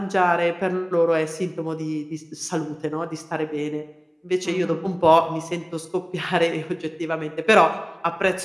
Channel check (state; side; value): identical; both; correlation 1.00